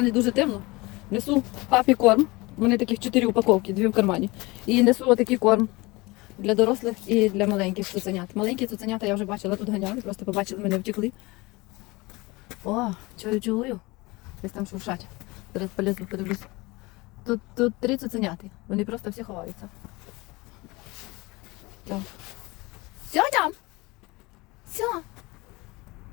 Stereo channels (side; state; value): right; quieter; 23.2 dB